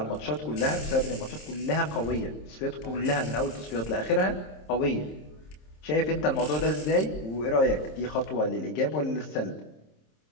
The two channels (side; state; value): right; late; 26 ms